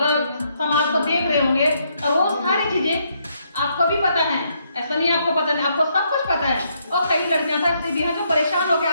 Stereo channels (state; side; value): inverted; both; correlation -0.74